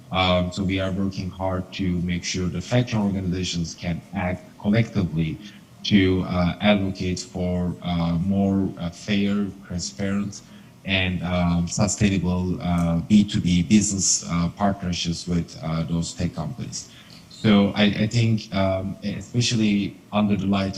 So we are working hard to make sure the fact-checking organizations can act collectively to advocate for more fair, transparent, and sustainable B2B business partnerships with those tech companies. So I think, especially under the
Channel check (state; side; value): identical; both; correlation 1.00